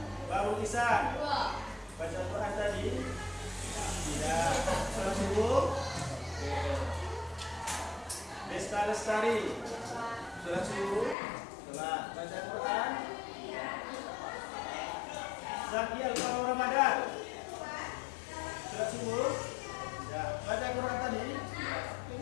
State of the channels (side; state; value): right; drops out; at 11.2 s